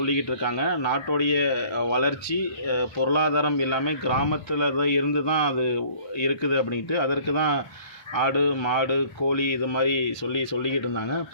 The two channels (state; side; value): late; right; 1.3 ms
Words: இருக்காங்க. நாட்டோடைய வளர்ச்சி பொருளாதாரம் எல்லாமே கிராமத்தில் தான் இருந்து தான் அது இருக்குது அப்படின்ட்டு. அதற்கு தான் ஆடு மாடு கோழி இது மாதிரி சொல்லிக்கிட்டு இருந்தாங்க.